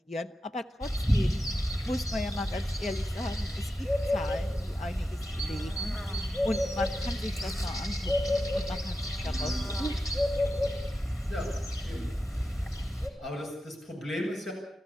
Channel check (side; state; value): both; normal; correlation 0.90